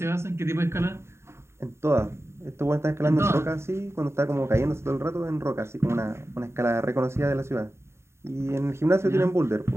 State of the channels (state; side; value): late; left; 0.13 ms